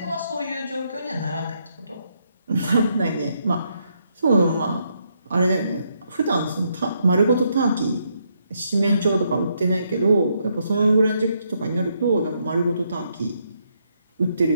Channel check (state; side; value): inverted; both; correlation -0.76